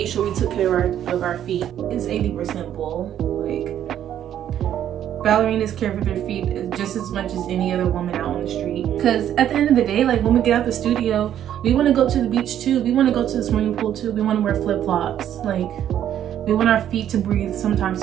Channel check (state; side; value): quieter; left; 10.6 dB